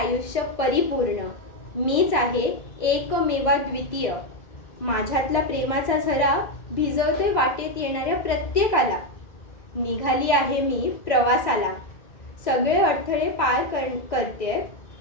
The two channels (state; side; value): late; right; 1.9 ms